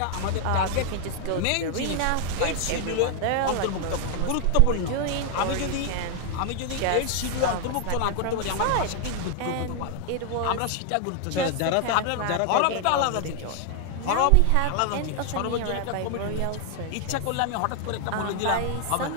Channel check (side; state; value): both; different; correlation 0.00